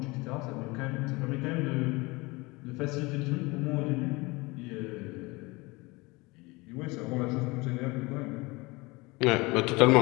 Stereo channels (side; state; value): right; quieter; 24.0 dB